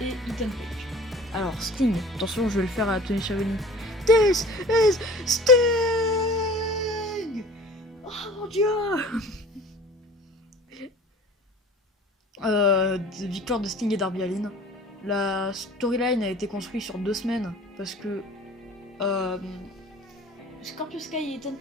et Ethan Page. Alors Sting, attention, je vais le faire à Tony Schiavone. This is Sting! Oh mon dieu! Victoire de Sting et Darby Allin. La storyline a été construite sur 2 semaines parce que Scorpio Sky et Ethan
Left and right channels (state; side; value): normal; both; correlation 0.43